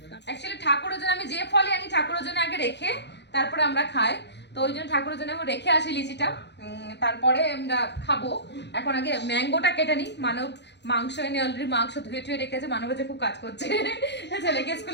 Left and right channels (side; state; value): right; late; 0.50 ms